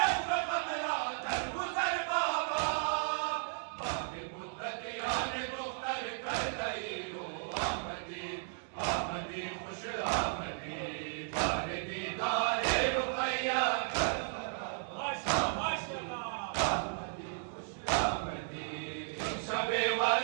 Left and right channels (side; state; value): left; silent; digital silence